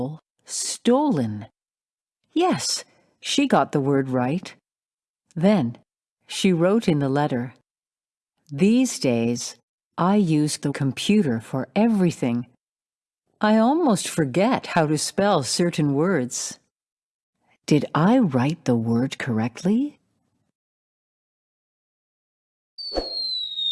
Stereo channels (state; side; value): identical; both; correlation 1.00